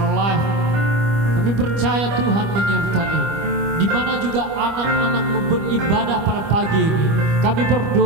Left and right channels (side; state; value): left; late; 25 ms